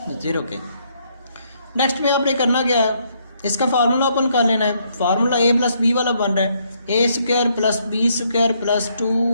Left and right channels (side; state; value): both; inverted; correlation -0.71